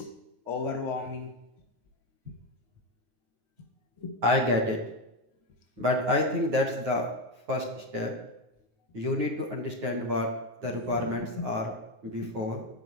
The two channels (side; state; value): left; late; 9.4 ms